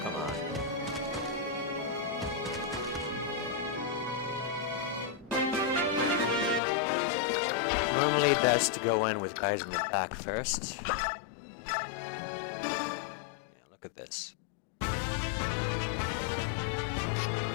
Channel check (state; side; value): drops out; right; at 6.6 s